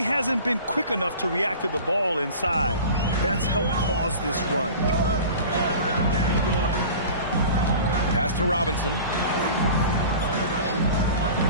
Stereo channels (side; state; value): both; inverted; correlation -0.39